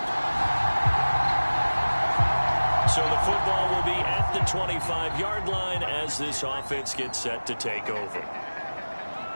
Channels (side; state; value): both; inverted; correlation -1.00